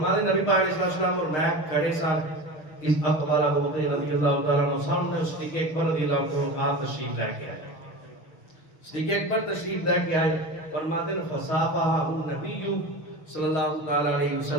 دیں نبی پاک علیہ السلام اور میں کھڑے ساتھ اس اقبال ابو بکر رضی اللہ تعالیٰ عنہ سامنے صدیق اکبر رضی اللہ تعالیٰ عنہ آپ تشریف لے کے آئے، صدیق اکبر تشریف لے کے آئے، فرما دیں فصافحہ النبی صلی اللہ تعالیٰ علیہ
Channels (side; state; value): right; late; 6.5 ms